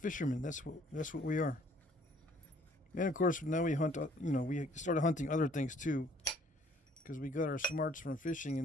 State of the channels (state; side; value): normal; both; correlation 0.60